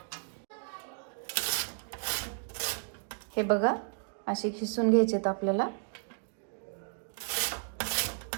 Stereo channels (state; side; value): silent; left; digital silence